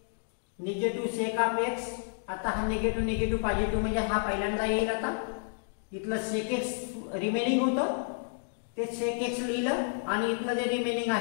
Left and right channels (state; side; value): silent; right; digital silence